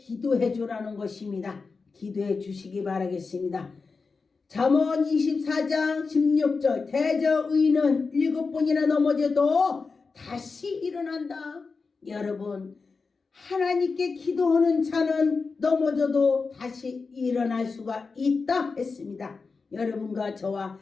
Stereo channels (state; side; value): quieter; right; 4.5 dB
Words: 주라는 것입니다. 기도해 주시기 바라겠습니다. 잠언 24장 16절 대저 의인은 7번이나 넘어져도 다시 일어난다. 여러분 하나님께 기도하는 자는 넘어져도 다시 일어날 수가 있다 했습니다. 여러분과 저와